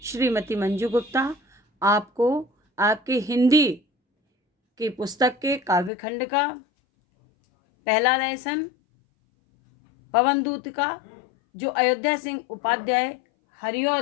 श्रीमती मंजू गुप्ता आपको आपके हिंदी की पुस्तक के काव्यखंड का पहला लेसन पवनदूत का जो अयोध्या सिंह उपाध्याय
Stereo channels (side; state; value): right; drops out; at 5.9 s